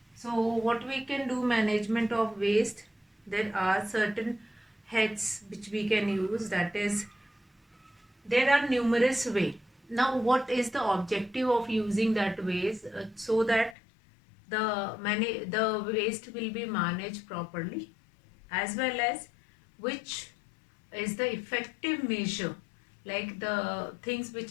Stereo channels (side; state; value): right; drops out; at 13.8 s